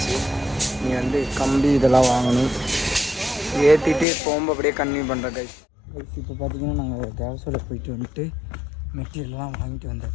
நீ வந்து கம்பி இதெல்லாம் வாங்கணும். ஏற்றிட்டு போகும்போது அப்படியே கன்டினியூ பண்ணுறேன் கைஸ். இப்போ பார்த்திங்கன்னா நாங்கள் தேவசோட போயிட்டு வந்துட்டு மெட்டீரியல்லாம் வாங்கிட்டு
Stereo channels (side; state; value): right; drops out; at 4.0 s